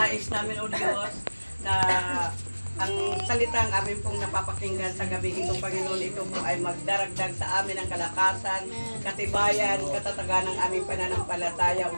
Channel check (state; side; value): inverted; both; correlation -1.00